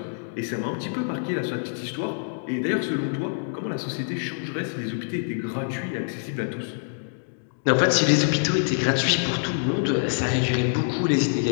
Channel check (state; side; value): silent; right; digital silence